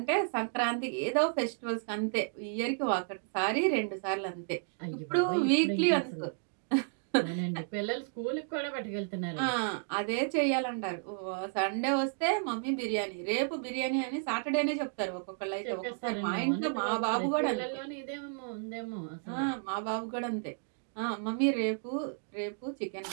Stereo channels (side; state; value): left; silent; digital silence